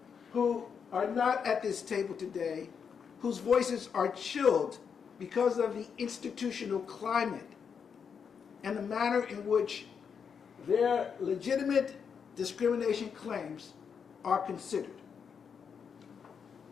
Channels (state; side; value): quieter; right; 6.7 dB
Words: who are not at this table today, whose voices are chilled because of the institutional climate and the manner in which their legitimate discrimination claims are considered.